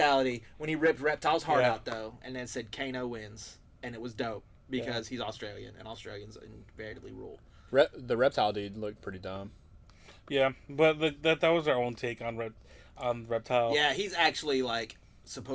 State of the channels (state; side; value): identical; both; correlation 1.00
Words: when he ripped Reptile's heart Yeah. out, though, and then said Kano wins. And it was dope because he's Australian, and Australians invariably rule. The reptile dude looked pretty dumb. Yeah, but that was our own take on Reptile. Yeah, he's actually, like,